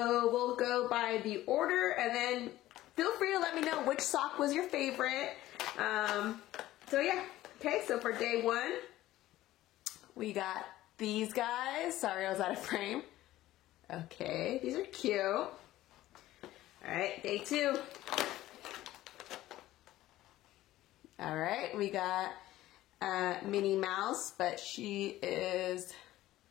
we'll go by the order and then feel free to let me know which sock was your favorite. So yeah. Okay, so for day one, we got these guys. Sorry, I was out of frame. Okay, these are cute. All right, day two. All right, we got Minnie Mouse, but she is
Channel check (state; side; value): quieter; right; 15.4 dB